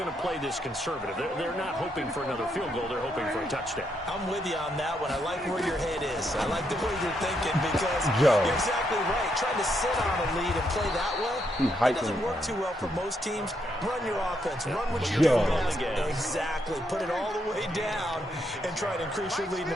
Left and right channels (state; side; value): normal; both; correlation 0.77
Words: to play this conservative. They're not hoping for another field goal. They're hoping for a touchdown. I'm with you on that one. I like where your head is. I like the way you're thinking because you're exactly right. Trying to sit on a lead and play that way, it doesn't work too well for most teams. Run your offense. Run what you're doing. Exactly. Put it all the way down and try to increase your lead in